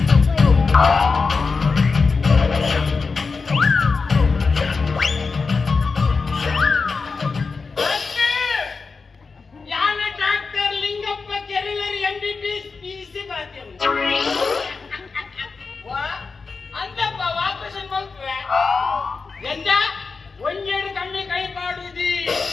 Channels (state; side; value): quieter; right; 4.6 dB